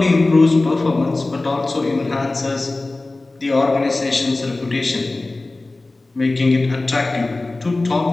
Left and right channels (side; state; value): right; quieter; 3.1 dB